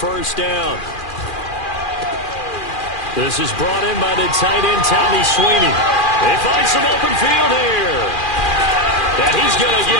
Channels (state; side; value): late; right; 2.4 ms